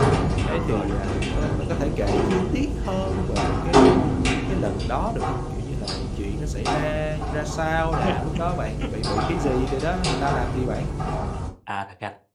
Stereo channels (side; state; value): both; identical; correlation 1.00